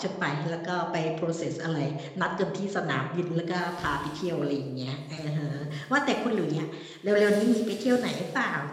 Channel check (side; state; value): both; identical; correlation 1.00